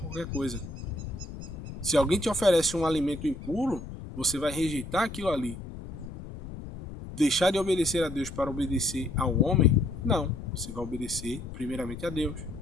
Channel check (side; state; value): left; noise; rumble, 11 dB below the sound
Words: coisa. Se alguém te oferece um alimento impuro, você vai rejeitar aquilo ali. Deixar de obedecer a Deus para obedecer ao homem? Não, você vai obedecer primeiramente a Deus.